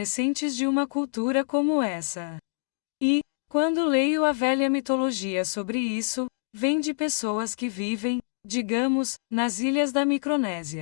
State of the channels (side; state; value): right; silent; digital silence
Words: de uma cultura como essa. E, quando leio a velha mitologia sobre isso, vem de pessoas que vivem, digamos, nas ilhas da